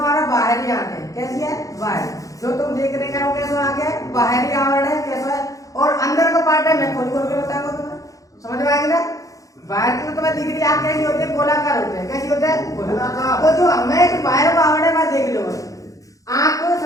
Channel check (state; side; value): late; right; 0.16 ms